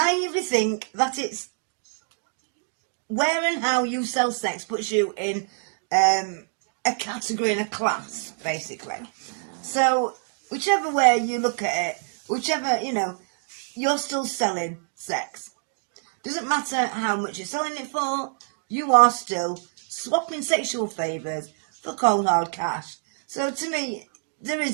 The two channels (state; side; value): silent; left; 61 dB below the other